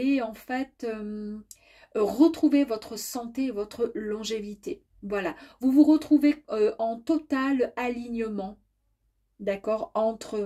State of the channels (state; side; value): identical; both; correlation 1.00